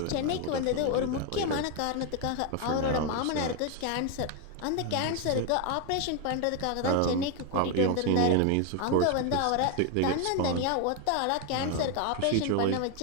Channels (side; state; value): both; different; correlation 0.01